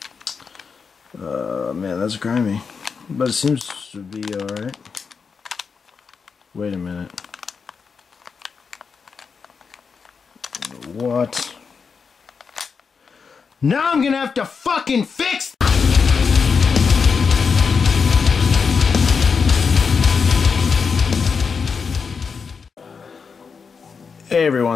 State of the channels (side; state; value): right; quieter; 5.6 dB